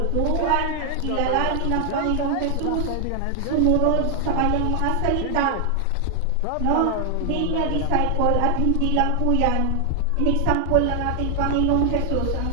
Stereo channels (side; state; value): both; different; correlation 0.00